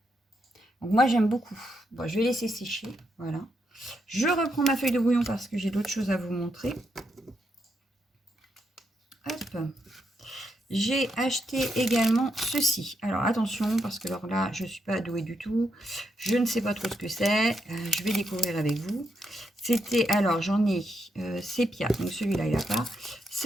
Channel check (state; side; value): normal; both; correlation 0.81